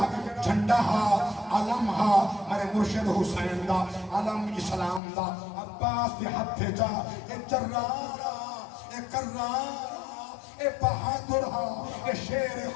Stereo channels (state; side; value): drops out; right; at 5.0 s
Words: جھنڈا ہا علم ہا میرے مرشد حسین دا علم اسلام دا عباس دے ہتھے جا اے جرارا اے کرارا اے بہادر ہا اے شیر